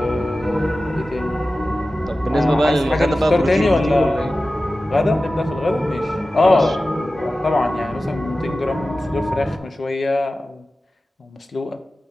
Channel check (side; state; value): both; normal; correlation 0.95